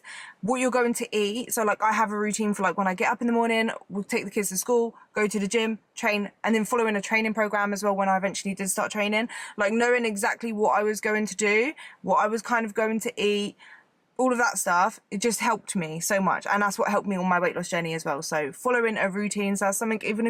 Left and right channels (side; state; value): both; identical; correlation 1.00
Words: what you're going to eat. So like, I have a routine for like, when I get up in the morning, we'll take the kids to school, go to the gym, train, and then following a training program as well when I eventually did start training. Like, knowing exactly what I was going to do, what I was kind of going to eat, all of that stuff, it just helped me so much. And that's what helped me on my weight loss journey as well. So following a routine, so that's something, even